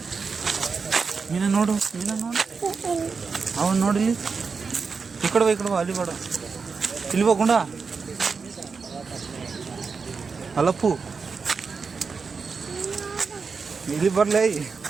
ಮೀನ ನೋಡು ಅವನು ನೋಡಿ ಈ ಕಡೆ ಬಾ ಅಲ್ಲಿ ಬೇಡ ಇಲ್ಲಿ ಹೋಗುಂಡ ಅಲ್ಲಪ್ಪು ಇಲ್ಲಿ ಬರ್ಲೇ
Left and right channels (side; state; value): left; quieter; 5.1 dB